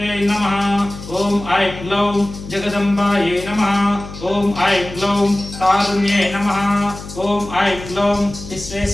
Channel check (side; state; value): left; noise; hum, 13 dB below the sound